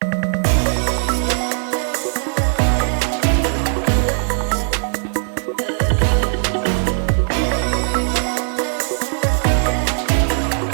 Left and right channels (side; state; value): left; silent; 62 dB below the other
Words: $126.99. 383 pick 3, good for $67.